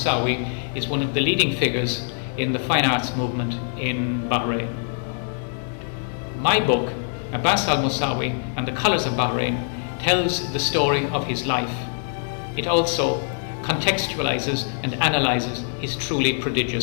is one of the leading figures in the fine arts movement in Bahrain. My book, Abbas Al Mosawi and the Colours of Bahrain, tells the story of his life. It also contextualizes and analyzes his truly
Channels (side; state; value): right; silent; digital silence